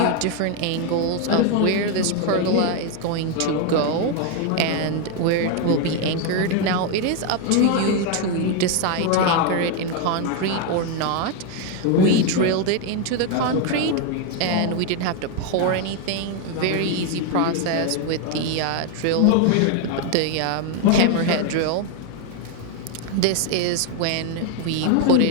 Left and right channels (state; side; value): different; both; correlation 0.01